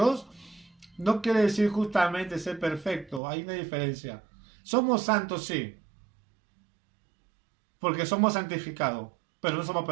no quiere decir justamente ser perfecto, hay una diferencia. Somos santos, sí, porque somos santificados, pero no somos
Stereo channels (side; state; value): left; drops out; at 3.2 s